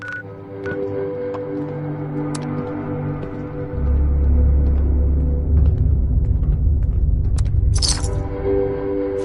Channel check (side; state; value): both; identical; correlation 1.00